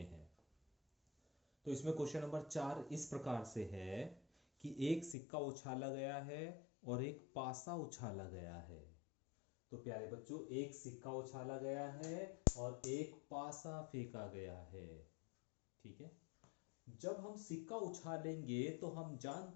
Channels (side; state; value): right; drops out; at 5.2 s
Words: हैं। तो इसमें क्वेश्चन नंबर 4 इस प्रकार से है कि एक सिक्का उछाला गया है और एक पासा उछाला गया है। तो प्यारे बच्चों, एक सिक्का उछाला गया है और एक पासा फेंका गया है। ठीक है। जब हम सिक्का उछालेंगे तो हम